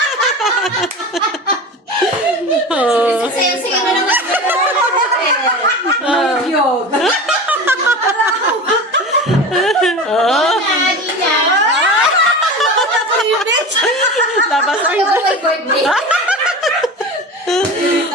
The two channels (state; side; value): normal; both; correlation 0.30